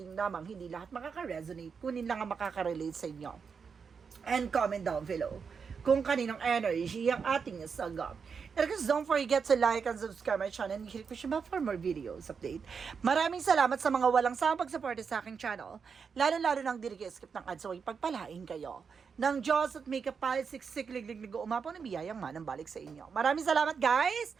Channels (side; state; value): left; quieter; 5.9 dB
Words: lamang. Hindi lahat makaka-resonate. Kunin lang ang makaka-relate sa inyo. And comment down below kung kaninong energy ang ating sagap. And guys, don't forget to like and subscribe my channel and hit push bell for more videos update. Maraming salamat sa mga walang sawang pagsuporta sa aking channel. Lalo-lalo nang di skip ng ads, so ipagpalain kayo ng Diyos at may kapalit siksik-liglig umapaw na biyayang manang balik sa inyo. Maraming salamat, guys,